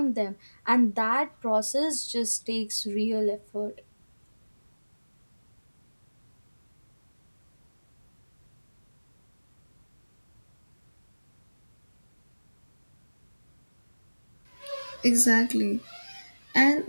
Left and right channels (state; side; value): inverted; both; correlation -1.00